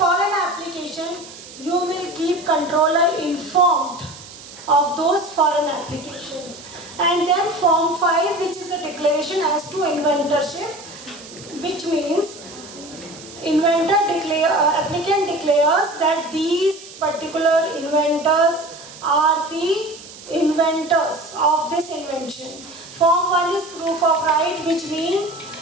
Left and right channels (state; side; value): noise; right; hiss, 17 dB below the sound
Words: application, you will keep controller informed of those foreign applications. And then form 5, which is a declaration as to inventorship, which means applicant declares that these particular inventors are the inventors of this invention. Form 1 is proof of right, which means